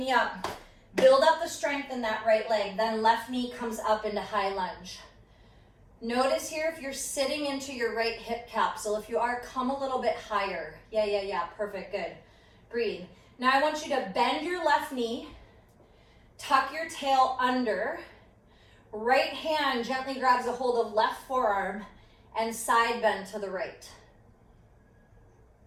up, build up the strength in that right leg. Then left knee comes up into high lunge. Notice here if you're sitting into your right hip capsule. If you are, come a little bit higher. Yeah. Perfect, good. Breathe. Now I want you to bend your left knee. Tuck your tail under. Right hand gently grabs a hold of left forearm and side bend to the right.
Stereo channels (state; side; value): identical; both; correlation 1.00